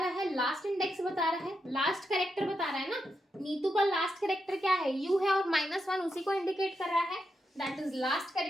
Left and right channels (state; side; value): normal; both; correlation 0.85